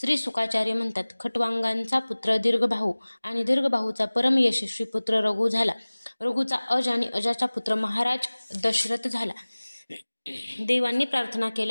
सुकाचार्य म्हणतात, खट्वांगांचा पुत्र दीर्घबाहू आणि दीर्घबाहूचा परम यशस्वी पुत्र रघु झाला. रघुचा अज आणि अजाचा पुत्र महाराज दशरथ झाला. देवांनी प्रार्थना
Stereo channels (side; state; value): both; inverted; correlation -1.00